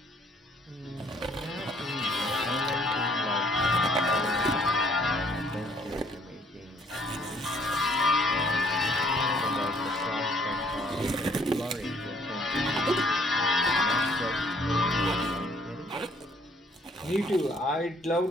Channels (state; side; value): normal; both; correlation 0.63